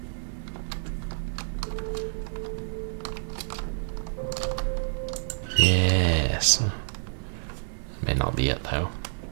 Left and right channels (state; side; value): silent; left; 59 dB below the other